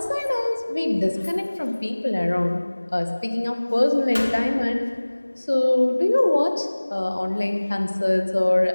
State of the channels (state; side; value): inverted; both; correlation -1.00